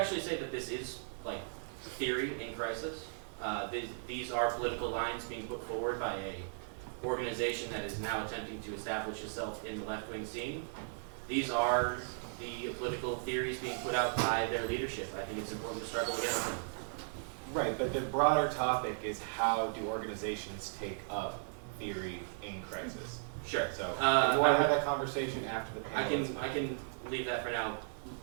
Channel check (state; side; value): silent; left; 53 dB below the other